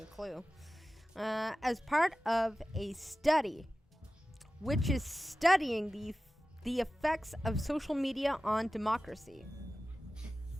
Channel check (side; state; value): both; normal; correlation 0.95